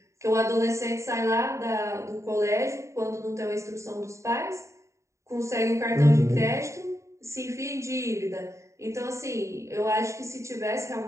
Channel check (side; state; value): left; late; 0.14 ms